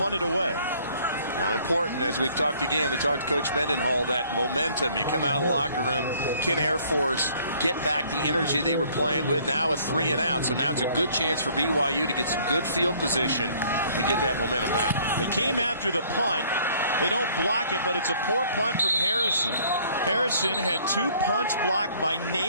it away. Now, important, as we've talked again, we talked to Coach Mendenhall, that momentum. You come out of the locker room, can Air Force get back the energy they were playing with? Now a 3 and out, so now it's a good chance for BYU to get some good field position and get that momentum back. They came after the punt. They don't block it, but it's a poor punt from Harrison. Harrison had 2 punts blocked by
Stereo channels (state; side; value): inverted; both; correlation -0.59